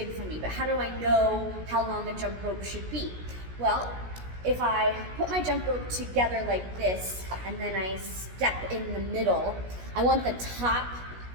for me, but how do I know how long a jump rope should be? Well, if I put my jump rope together like this, and then I step in the middle, I want the top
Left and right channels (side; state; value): left; late; 16 ms